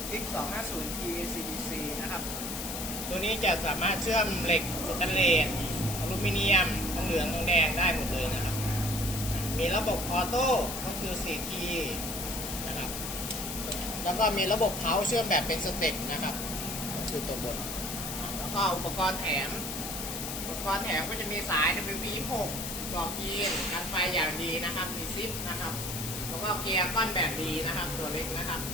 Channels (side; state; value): left; noise; hiss, 5 dB below the sound